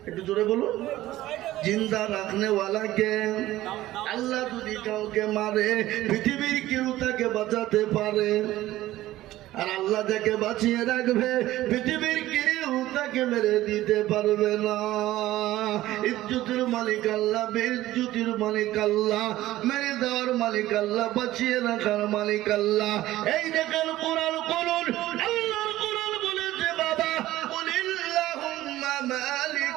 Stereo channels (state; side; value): quieter; left; 15.5 dB